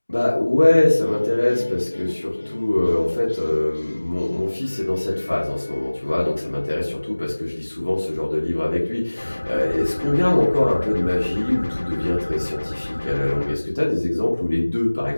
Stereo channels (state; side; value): inverted; both; correlation -1.00